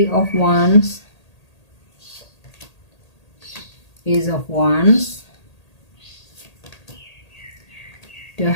of Wands, Ace of Wands, The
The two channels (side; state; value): right; late; 1.8 ms